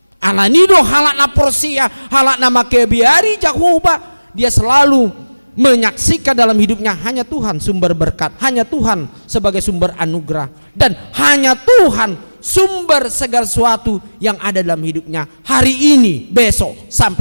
Alanido halak na porsia halak nama kebiari Jehovah dia selalu menyaksikan dalam hidupnya hanya Tuhan sumber berkat, hanya Tuhan sebagai sumber anugerah dan hanya Tuhan sumber segala sesuatu yang ada dalam hidupnya hari ini, besok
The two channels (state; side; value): inverted; both; correlation -1.00